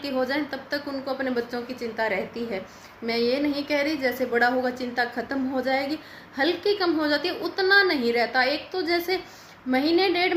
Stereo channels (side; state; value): both; identical; correlation 1.00